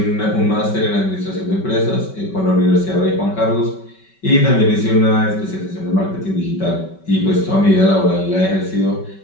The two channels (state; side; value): late; right; 5.3 ms